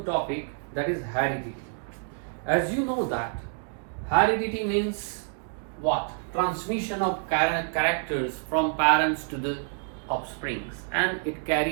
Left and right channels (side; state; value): left; silent; 57 dB below the other